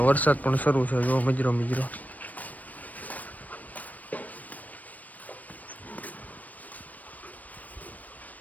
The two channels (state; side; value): late; right; 0.075 ms